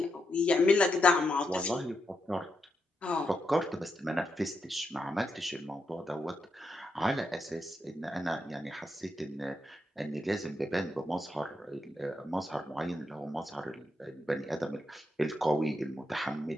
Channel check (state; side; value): normal; both; correlation 0.83